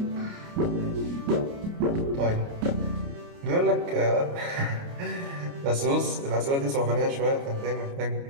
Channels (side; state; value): left; late; 29 ms